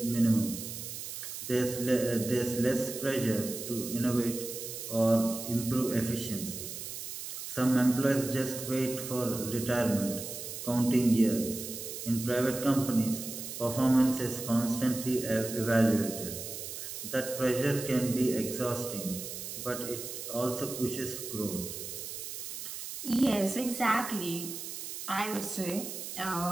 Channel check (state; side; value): noise; right; hiss, 8 dB below the sound